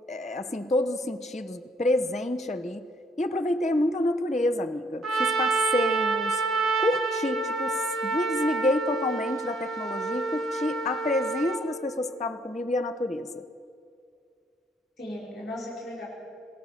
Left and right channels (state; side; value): normal; both; correlation 0.66